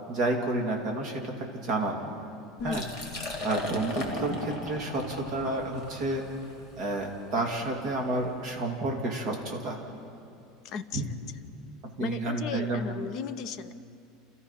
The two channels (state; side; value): normal; both; correlation 0.33